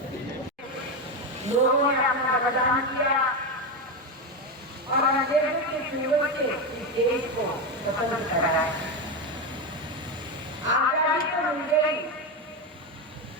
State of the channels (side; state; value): both; normal; correlation 0.13